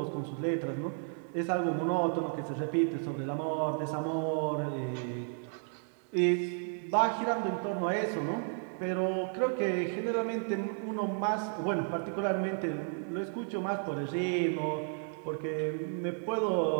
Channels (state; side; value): silent; left; 56 dB below the other